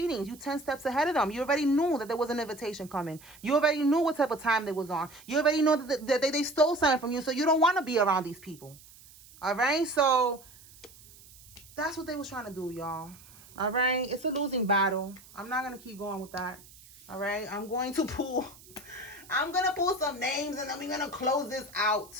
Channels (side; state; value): right; noise; hiss, 22 dB below the sound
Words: You 10 steps ahead of them. You already knew that there was an invitation coming. You already knew what type of time they was on. You already know that they stole something from you, so you don't want to be around these people. All right? So that's what they was trying to do, y'all. All right? It's a losing battle. I'm not going to keep going with that. All right? I'm going to pull some names and then we're going to close this out.